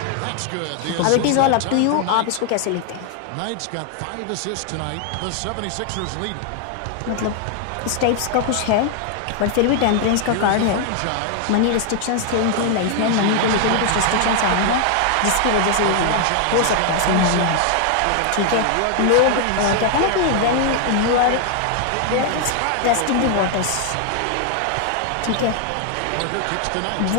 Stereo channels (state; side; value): different; both; correlation 0.00